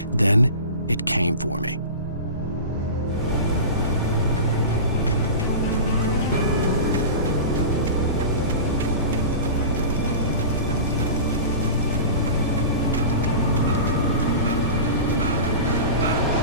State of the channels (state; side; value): inverted; both; correlation -0.32